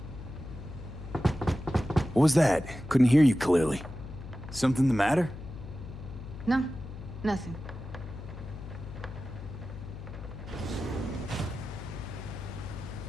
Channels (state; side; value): noise; left; hum, 11 dB below the sound